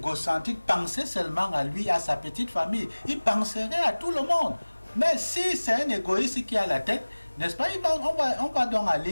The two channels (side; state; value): both; inverted; correlation -1.00